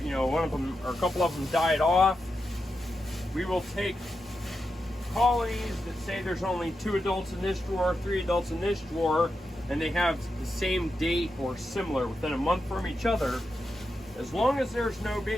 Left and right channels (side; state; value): both; normal; correlation 0.88